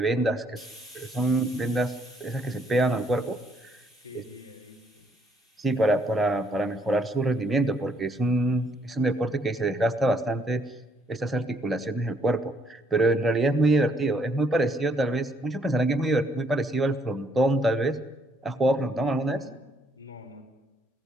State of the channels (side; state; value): both; normal; correlation 0.69